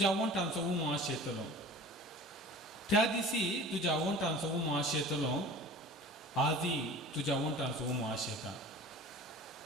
वंटांचो उमास येतलो त्या दिसी तुज्या वंटांचो उमास येतलो आजी तुज्या वंटांचो उमास येता.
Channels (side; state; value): both; normal; correlation 0.41